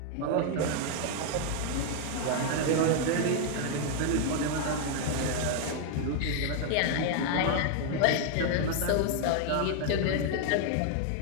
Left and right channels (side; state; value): both; different; correlation 0.00